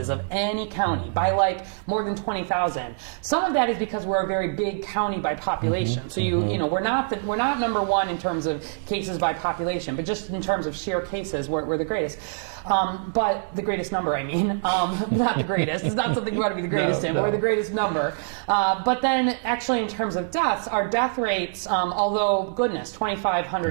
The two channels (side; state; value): left; silent; digital silence